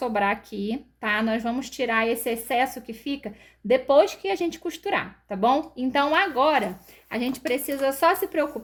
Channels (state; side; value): identical; both; correlation 1.00